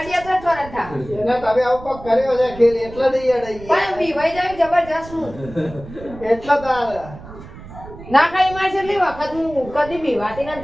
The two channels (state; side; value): noise; right; rumble, 16 dB below the sound